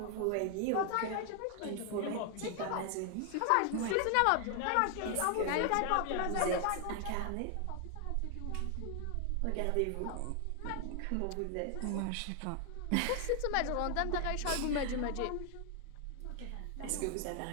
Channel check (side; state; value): both; different; correlation 0.00